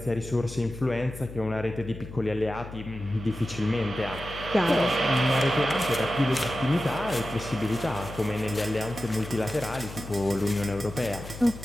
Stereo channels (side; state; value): left; noise; hum, 12 dB below the sound